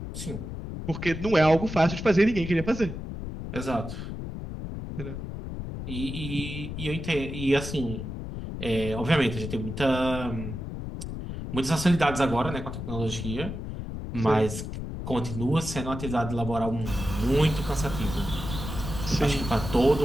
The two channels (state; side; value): noise; left; rumble, 7 dB below the sound